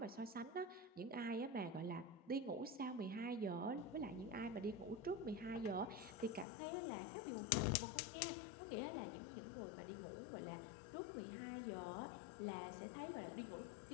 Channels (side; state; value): right; drops out; at 6.5 s